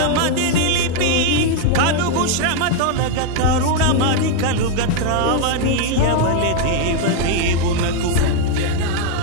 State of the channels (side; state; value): both; different; correlation 0.01